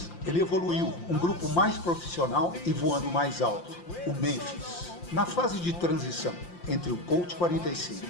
Ele evoluiu, um grupo mais profissional e voando mais alto, o Memphis. Na fase de transição entre o Colt 45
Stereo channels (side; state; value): right; late; 5.7 ms